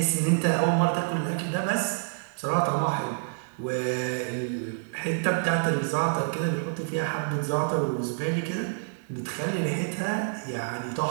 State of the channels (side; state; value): left; silent; digital silence